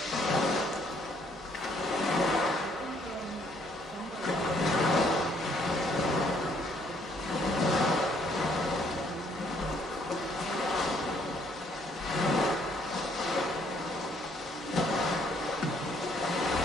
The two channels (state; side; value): normal; both; correlation 0.66